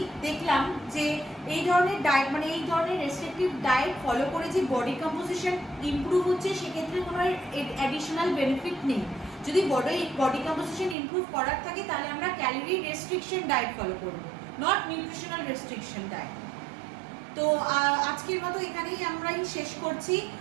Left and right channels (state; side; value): drops out; left; at 11.0 s